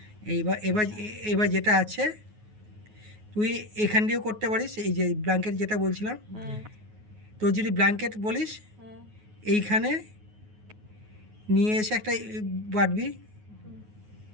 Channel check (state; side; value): late; left; 9.4 ms